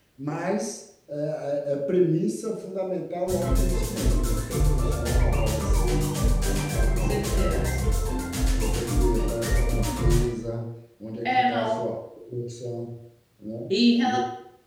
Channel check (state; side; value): identical; both; correlation 1.00